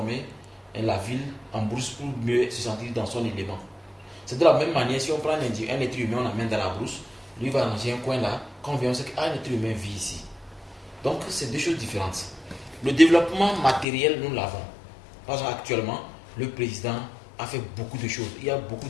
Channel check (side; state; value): right; drops out; at 13.9 s